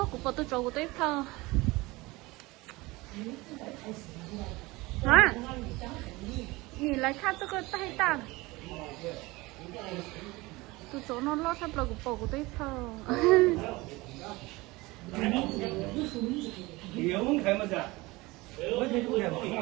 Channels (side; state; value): left; quieter; 21.9 dB